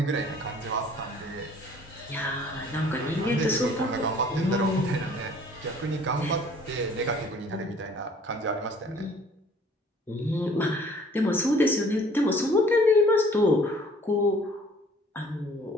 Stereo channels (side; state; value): both; normal; correlation 0.54